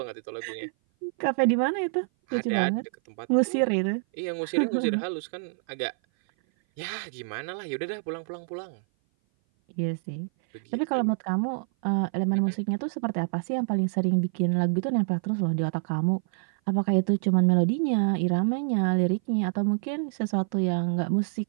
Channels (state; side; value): silent; left; 57 dB below the other